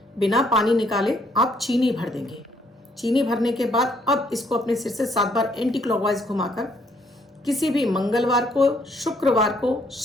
बिना पानी निकाले आप चीनी भर देंगे। चीनी भरने के बाद अब इसको अपने सिर से 7 बार एंटी क्लॉकवाइज घुमाकर किसी भी मंगलवार को, शुक्रवार को,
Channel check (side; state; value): both; normal; correlation 0.68